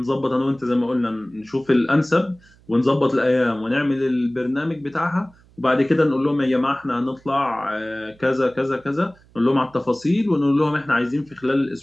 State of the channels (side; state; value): right; noise; hum, 29 dB below the sound